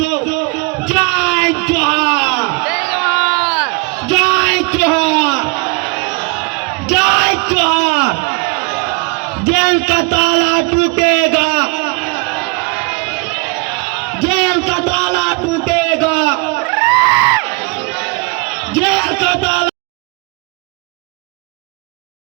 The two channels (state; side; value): quieter; left; 30.3 dB